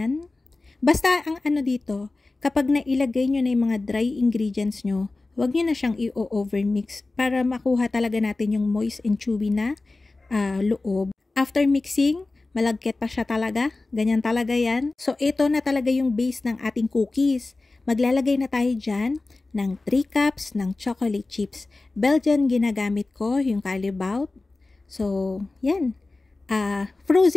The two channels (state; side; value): quieter; right; 3.3 dB